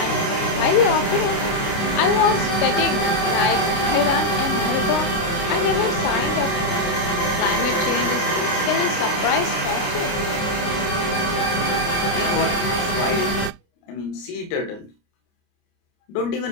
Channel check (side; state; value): right; late; 29 ms